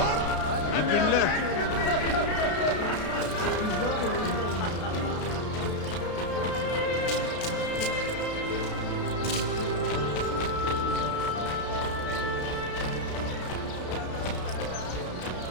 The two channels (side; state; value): right; late; 32 ms